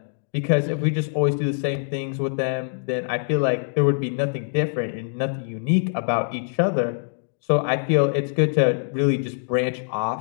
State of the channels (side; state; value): right; silent; digital silence